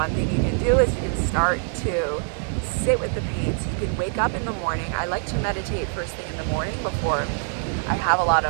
thing you can do is you can start to sit with the pain. So you can wake up in the morning. I like to meditate first thing in the morning before I have a lot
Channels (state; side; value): silent; left; 58 dB below the other